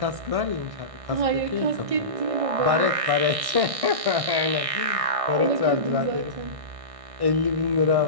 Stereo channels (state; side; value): late; left; 1.6 ms